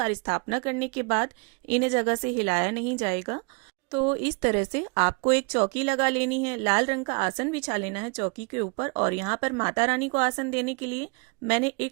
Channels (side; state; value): left; quieter; 34.2 dB